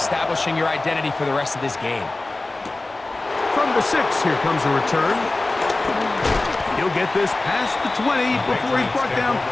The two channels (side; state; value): right; quieter; 3.0 dB